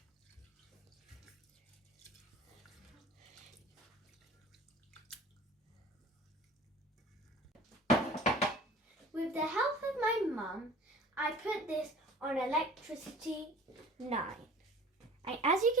With the help of my mum, I put this on electricity 9. And as you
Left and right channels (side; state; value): both; normal; correlation 0.44